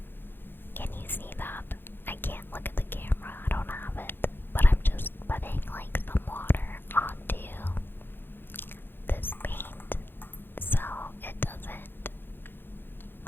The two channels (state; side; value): late; right; 0.10 ms